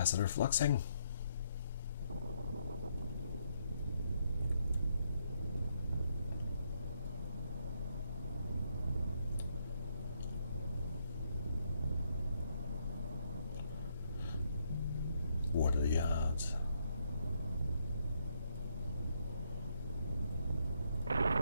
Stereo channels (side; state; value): both; inverted; correlation -0.74